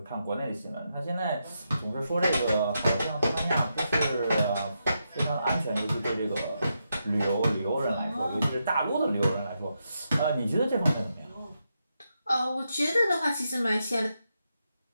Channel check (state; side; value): inverted; both; correlation -0.84